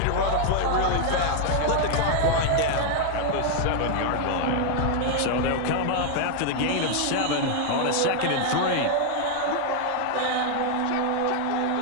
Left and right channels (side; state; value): both; different; correlation 0.00